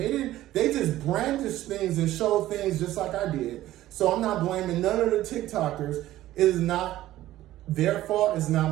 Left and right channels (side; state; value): left; quieter; 14.7 dB